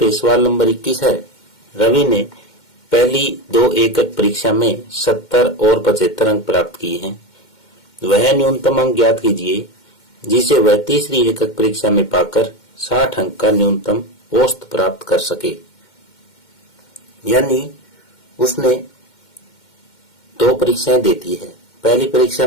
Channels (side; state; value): right; late; 2.1 ms